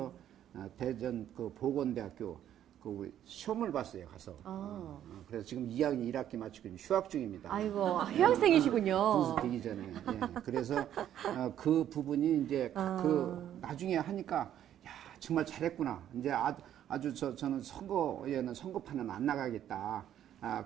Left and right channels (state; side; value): quieter; left; 10.9 dB